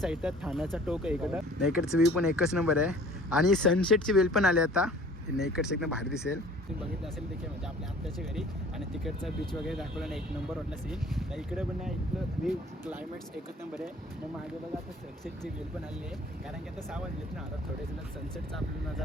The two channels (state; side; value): normal; both; correlation 0.50